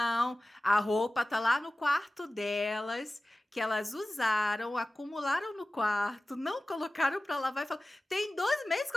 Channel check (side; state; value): both; normal; correlation 0.97